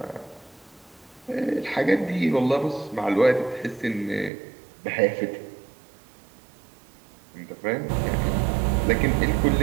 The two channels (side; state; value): left; drops out; at 4.3 s